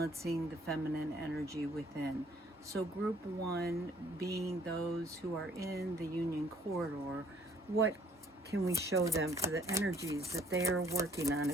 the feminine energy within. So group 1 being those who are in the union corridor, what can we show them for the energies that they are working on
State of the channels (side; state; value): both; normal; correlation 0.61